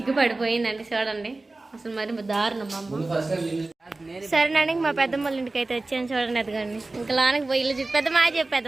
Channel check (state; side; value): quieter; left; 3.2 dB